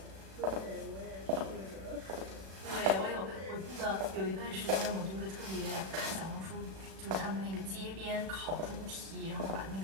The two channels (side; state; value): left; late; 36 ms